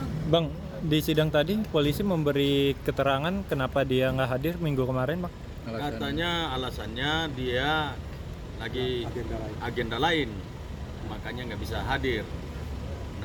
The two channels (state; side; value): identical; both; correlation 1.00